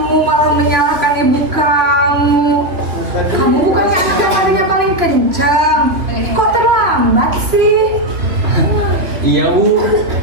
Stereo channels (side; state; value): left; late; 3.0 ms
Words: malah menyalahkan ibu kamu. Kamu bukannya anak yang mainnya paling kencang. Kok terlambat sih? Iya Bu,